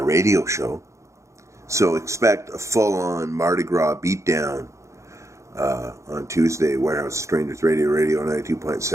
show. So expect a full-on Mardi Gras beatdown on Tuesday, Warehouse Strangers Radio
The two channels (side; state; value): left; late; 0.14 ms